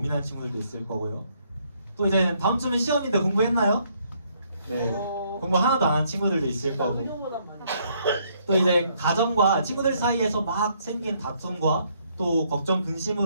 친구들도 있을 거고요. 또 이제 다음 주면 시험인데 공부했나요? 네. 공부 하나도 안 한 친구들도 있을 거고. 그녀보단 많이. 또 이제 가정과 친구들 사이에서 막 생긴 다툼과 또 걱정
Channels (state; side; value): inverted; both; correlation -0.69